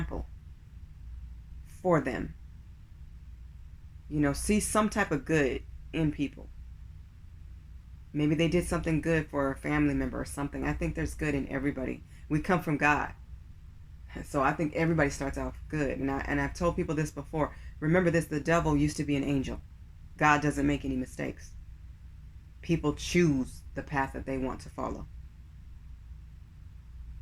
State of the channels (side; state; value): both; identical; correlation 1.00